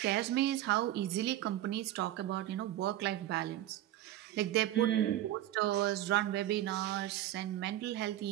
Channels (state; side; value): quieter; left; 13.6 dB